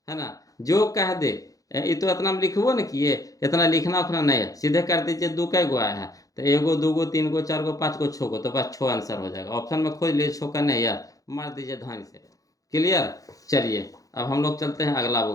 है ना। जो कह दे ये तो इतना हम लिखबो न किए, इतना लिखना उखना नहीं है, सीधे कर दीजिए 2 कै गो आया है, तो 1 2 3 4 5 6 तो बस 6 आंसर हो जाएगा। ऑप्शन में खोज लीजिए 6 का नहीं यार, मार दीजिए धान से। क्लियर। चलिए अब हम लोग चलते हैं अगला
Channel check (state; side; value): late; right; 0.17 ms